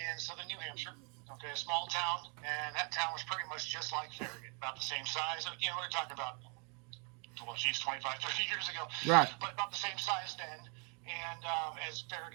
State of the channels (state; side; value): quieter; left; 35.3 dB